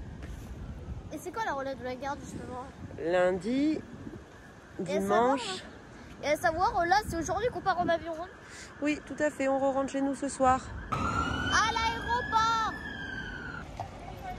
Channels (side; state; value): both; identical; correlation 1.00